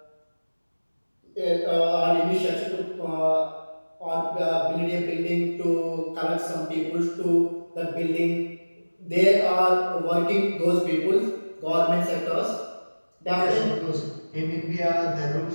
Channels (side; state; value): both; inverted; correlation -1.00